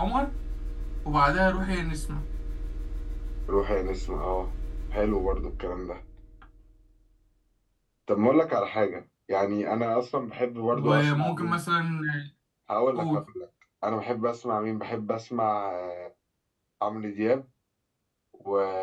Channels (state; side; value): identical; both; correlation 1.00